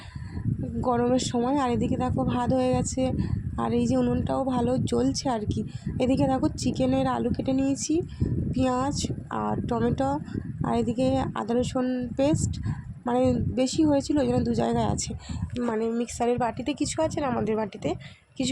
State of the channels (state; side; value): identical; both; correlation 1.00